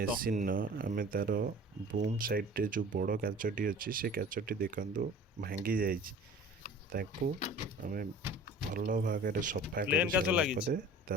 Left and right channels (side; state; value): both; normal; correlation 0.44